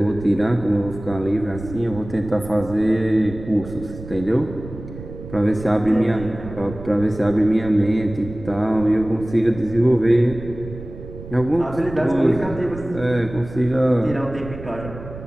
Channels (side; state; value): right; noise; rumble, 13 dB below the sound